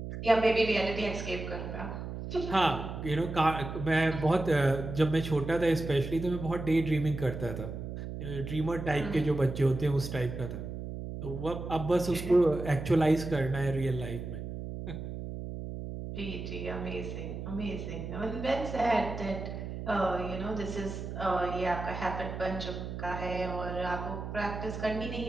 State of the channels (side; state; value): right; noise; hum, 7 dB below the sound